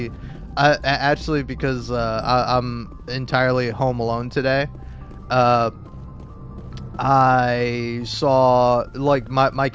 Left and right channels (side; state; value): both; identical; correlation 1.00